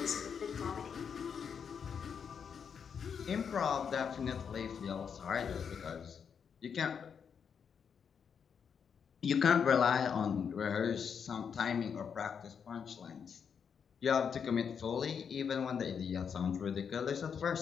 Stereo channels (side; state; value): right; quieter; 7.0 dB